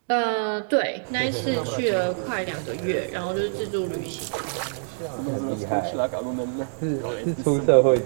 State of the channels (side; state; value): left; silent; digital silence